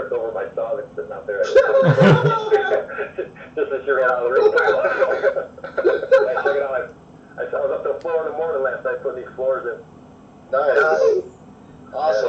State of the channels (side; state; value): both; identical; correlation 1.00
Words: over my saw that's sitting out there. Just as she ran out of the room. Check it out. I was up to the floor in the morning last night putting these floors in. Nice.